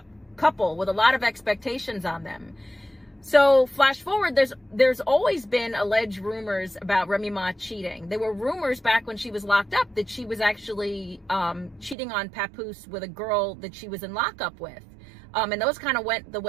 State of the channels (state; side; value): drops out; left; at 12.0 s